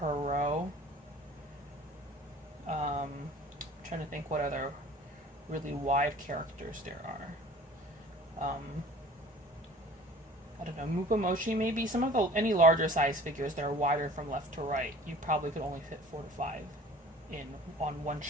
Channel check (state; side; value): normal; both; correlation 0.46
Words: row. Trying to think what other really wide characters there are. I don't know, Mupamoshi maybe. Some of any larger size figures that are wider from left to right, you probably could only fit 4 to 5 on one